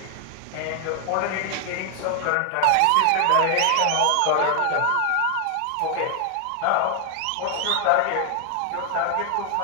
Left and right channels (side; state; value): both; different; correlation 0.01